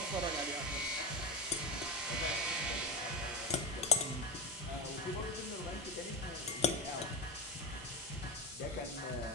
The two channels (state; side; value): normal; both; correlation 0.18